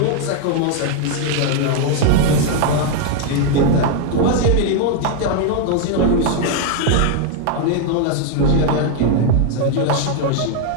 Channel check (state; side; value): different; both; correlation 0.00